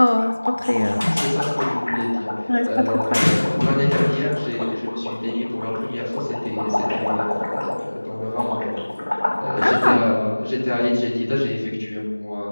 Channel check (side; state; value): both; inverted; correlation -1.00